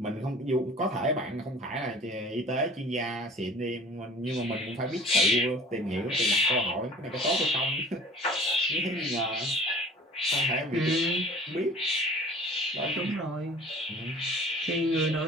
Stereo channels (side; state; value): both; normal; correlation 0.45